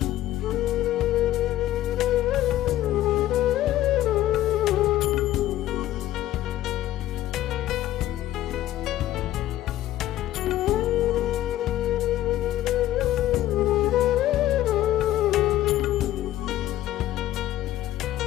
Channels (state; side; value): quieter; right; 14.0 dB